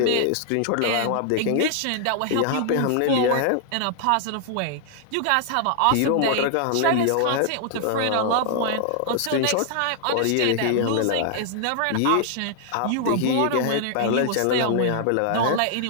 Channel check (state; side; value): different; both; correlation 0.00